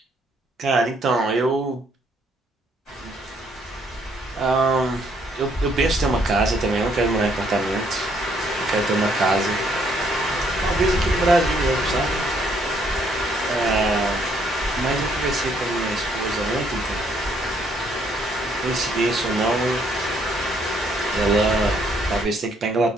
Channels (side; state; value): both; normal; correlation 0.68